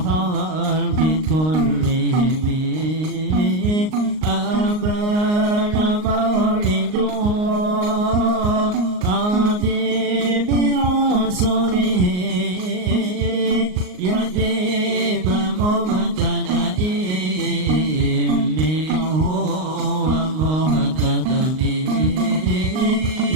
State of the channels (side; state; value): left; late; 38 ms